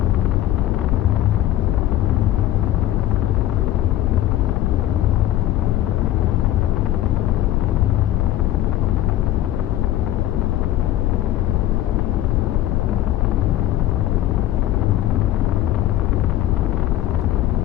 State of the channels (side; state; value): right; quieter; 13.4 dB